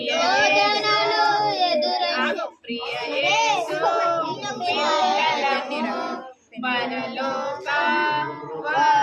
ఎదురగు ప్రియ యేసు పిల్లలము పరలోక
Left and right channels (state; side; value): identical; both; correlation 1.00